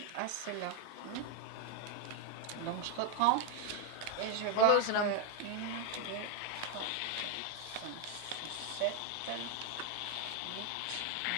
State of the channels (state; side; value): different; both; correlation 0.01